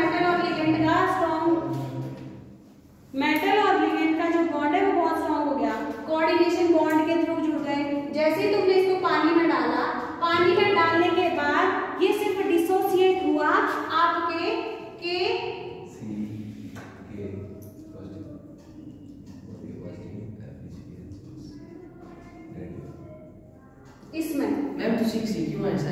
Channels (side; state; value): both; identical; correlation 1.00